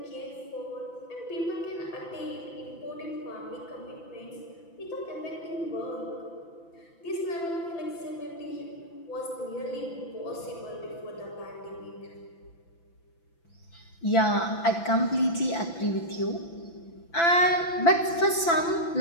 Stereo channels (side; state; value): right; late; 6.0 ms